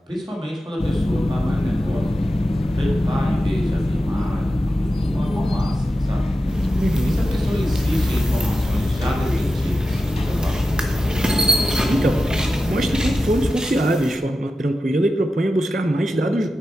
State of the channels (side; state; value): both; normal; correlation 0.91